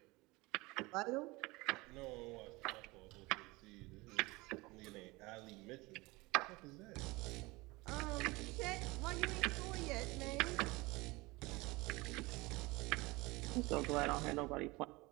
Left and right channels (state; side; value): quieter; left; 22.9 dB